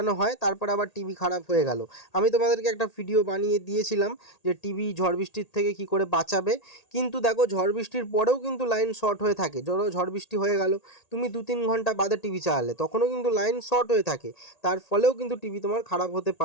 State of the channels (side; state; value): right; late; 1.8 ms